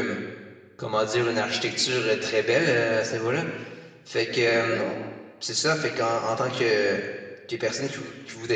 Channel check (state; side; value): identical; both; correlation 1.00